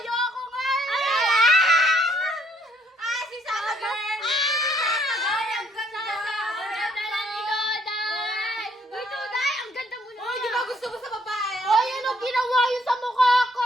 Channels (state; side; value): normal; both; correlation 0.66